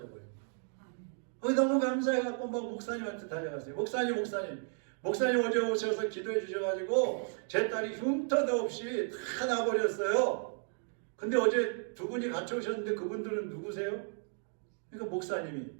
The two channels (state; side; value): silent; left; 55 dB below the other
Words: 버려요. 너무 감사해갖고 막 목사님한테 달려갔어요. 목사님 어제 오셔서 기도해 주셔가지고 제 딸이 흉터도 없이 다 나버렸어요. 근데 어제 두 분이 같이 오셨는데 그분들은 누구세요? 그러니까 목사님이,